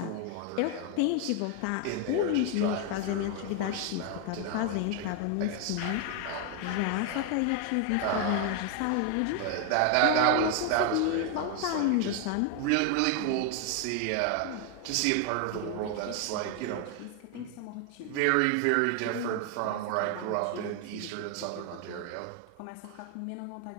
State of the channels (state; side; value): different; both; correlation 0.01